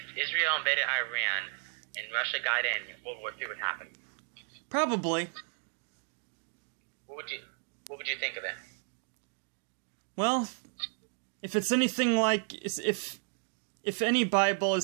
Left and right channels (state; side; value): silent; left; 56 dB below the other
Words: Israel invaded Iran and Russia got in, World War III would happen? Probably. What would you think of it? Well, if it's anything like if any Bible